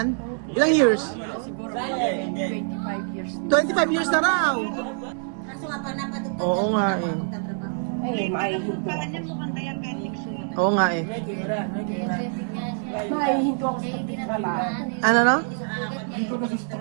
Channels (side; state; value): left; silent; 56 dB below the other